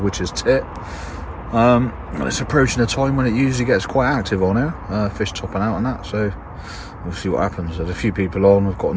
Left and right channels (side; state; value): both; identical; correlation 1.00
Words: tit. And it's approaching a time when it usually gets quite active on here, fish topping out and that, so we'll see what happens. There's a few people on, we've got